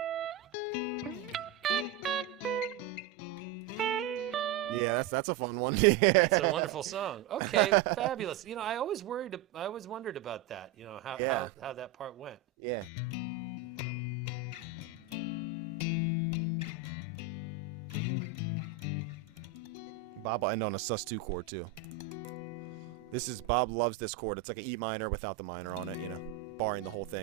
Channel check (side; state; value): left; quieter; 7.2 dB